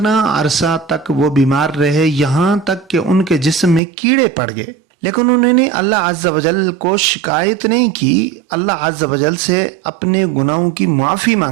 عرصہ تک وہ بیمار رہے، یہاں تک کہ ان کے جسم میں کیڑے پڑ گئے، لیکن انہوں نے اللہ عز و جل کو شکایت نہیں کی، اللہ عز و جل سے اپنے گناہوں کی معافی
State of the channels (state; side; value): drops out; left; at 3.8 s